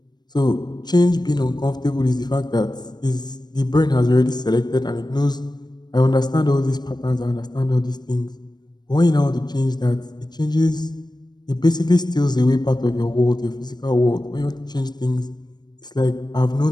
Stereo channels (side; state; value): right; late; 0.20 ms